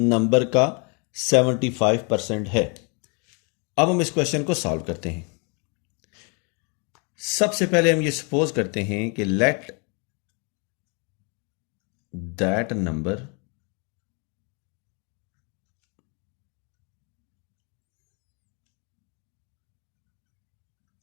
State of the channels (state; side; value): quieter; right; 34.5 dB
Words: का 75% है। अब हम इस क्वेश्चन को सॉल्व करते हैं। सबसे पहले हम ये सपोज करते हैं कि late that number